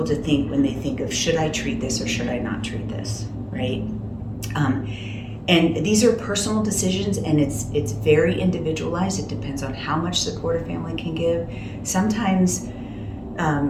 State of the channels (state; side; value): identical; both; correlation 1.00